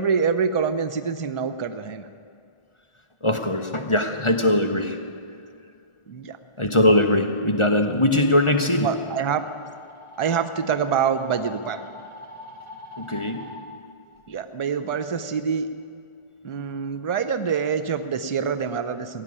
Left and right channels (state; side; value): late; right; 1.4 ms